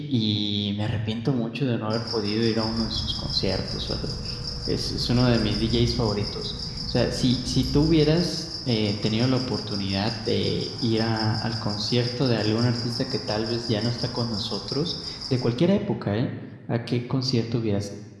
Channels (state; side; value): identical; both; correlation 1.00